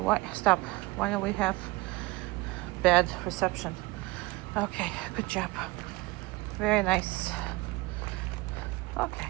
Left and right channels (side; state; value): left; quieter; 22.1 dB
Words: Stop. Why don't we have bad reception? Okay, good job. Very nice. Okay.